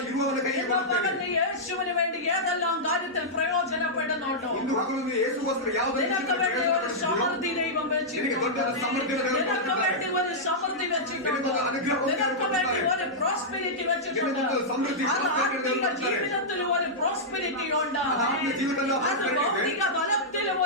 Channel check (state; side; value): normal; both; correlation -0.10